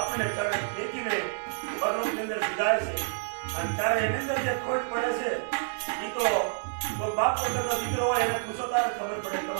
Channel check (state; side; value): silent; left; digital silence